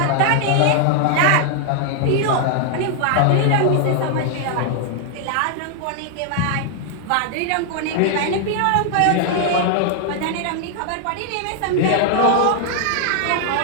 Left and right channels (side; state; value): both; different; correlation 0.00